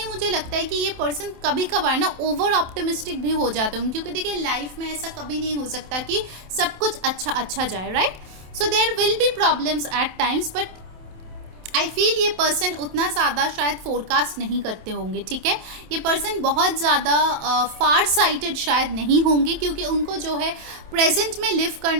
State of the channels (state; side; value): late; left; 27 ms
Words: मुझे लगता है कि ये पर्सन कभी कभार ना ओवर ऑप्टिमिस्टिक भी हो जाते हैं, क्योंकि देखिए लाइफ में ऐसा कभी नहीं हो सकता कि सब कुछ अच्छा अच्छा जाए, right. So there will be problems at times, but I feel ये पर्सन उतना ज़्यादा शायद फोरकास्ट नहीं करते होंगे, ठीक है। ये पर्सन बहुत ज़्यादा फार साइटेड शायद नहीं होंगे, क्योंकि उनको जो है प्रेजेंट में लिव